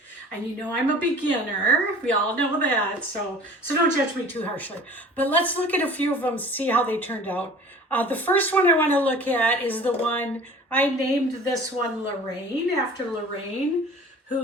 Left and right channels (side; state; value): both; normal; correlation 0.44